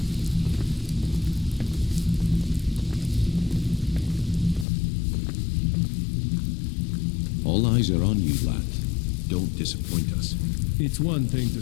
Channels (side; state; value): right; drops out; at 4.7 s